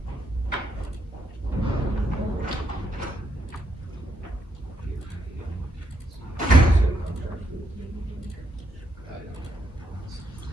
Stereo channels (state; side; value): normal; both; correlation 0.78